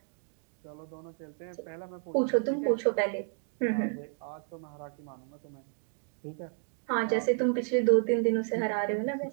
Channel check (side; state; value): left; silent; 57 dB below the other